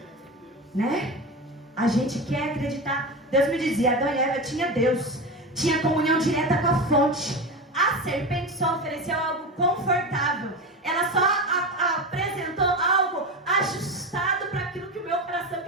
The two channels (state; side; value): normal; both; correlation 0.23